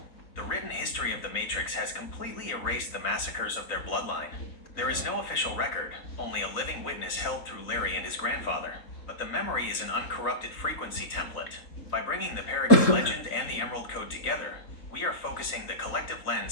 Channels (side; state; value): right; late; 3.9 ms